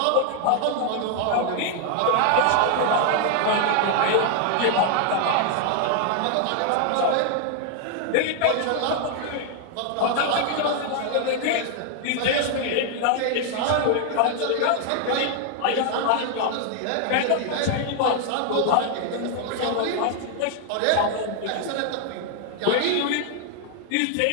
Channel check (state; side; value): different; both; correlation 0.00